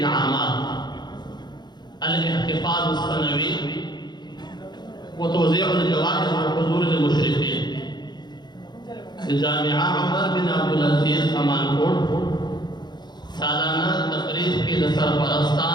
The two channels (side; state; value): right; late; 0.21 ms